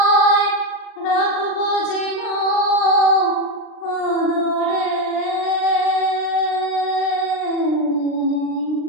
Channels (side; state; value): right; late; 39 ms